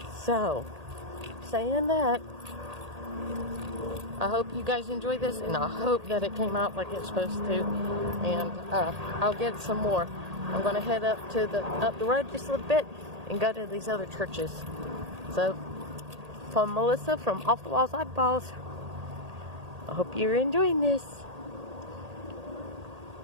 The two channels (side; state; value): left; late; 1.8 ms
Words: So, saying that, I hope you guys enjoyed this, and I hope that it came out like it's supposed to. And I'll get some more. I'm going to head up the road just a little bit and go to these other churches. So, from Melissa from Off the Walls Oddballs, I hope you're enjoying this.